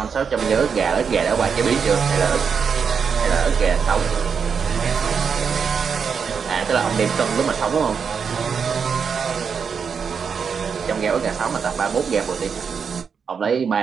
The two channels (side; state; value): left; quieter; 6.3 dB